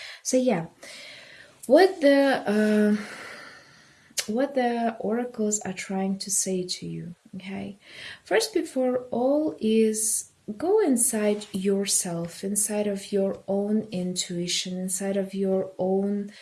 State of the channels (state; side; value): identical; both; correlation 1.00